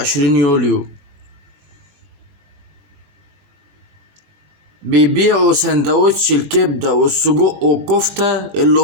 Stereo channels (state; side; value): late; left; 20 ms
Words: يوليو بيبيعوا سندوتش الكبدة والسجق والكفتة اللي